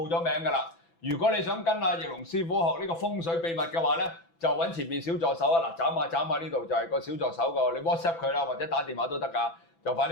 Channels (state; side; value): late; right; 6.0 ms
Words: 咗名㗎啦。如果你想跟阿翼龍師傅學呢個風水秘密嘅話咧，就揾前面小助手啊！嗱，斬下呢度就係個小助手個，你 WhatsApp 佢啦，或者打電話都得㗎，就快